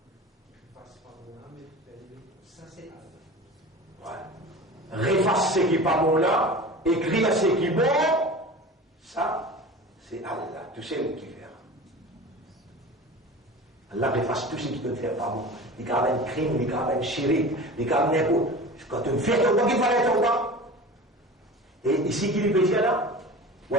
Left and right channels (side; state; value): both; normal; correlation 0.36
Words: Ouais. Réface ce qui n'est pas bon là, écrire ce qui est bon, ça, c'est Allah. Tu sais le qui fait. Allah efface tout ce qui peut faire pas bon. Il y a un crime, il y a un chirik, il y a un n'importe. Quand tu fais ton qu'il fallait ton bas. Et ici, qui lui peut dire là?